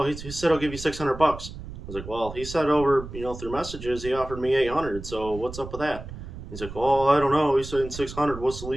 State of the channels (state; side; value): noise; right; rumble, 12 dB below the sound